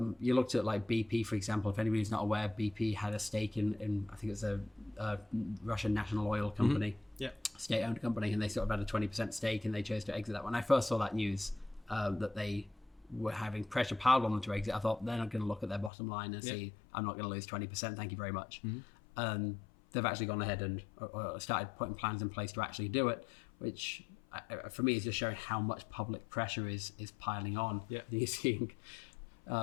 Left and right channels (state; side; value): drops out; right; at 15.9 s